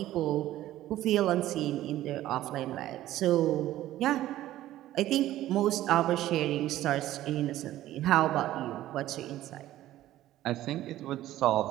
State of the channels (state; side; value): quieter; left; 14.3 dB